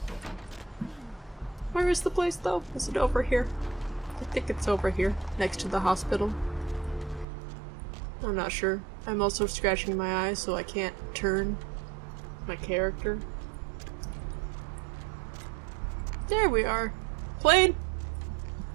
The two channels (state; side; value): drops out; left; at 7.2 s